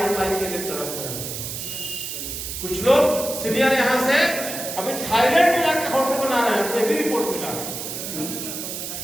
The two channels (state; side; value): noise; right; hiss, 6 dB below the sound